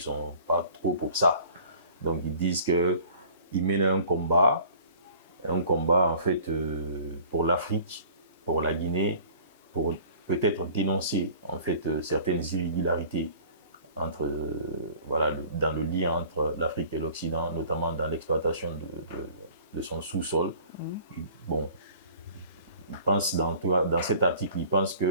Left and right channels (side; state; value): both; inverted; correlation -0.48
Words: sont pas trop pour ça. Donc, ils disent qu'ils mènent un combat en fait pour l'Afrique, pour la Guinée, pour peut-être dénoncer en fait certaines irrégularités entre, voilà, dans le lien entre l'Afrique et l'Occident, notamment dans l'exploitation de son sous-sol. Bon, il pense dans cet article, il pense